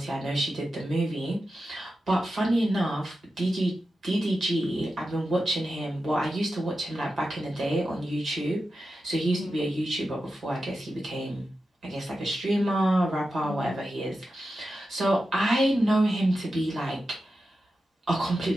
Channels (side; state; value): both; normal; correlation 0.91